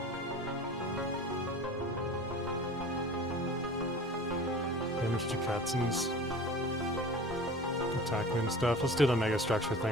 Damage to Katzens. Attack and stuff. Let's do the mega structure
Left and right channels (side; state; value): both; normal; correlation 0.39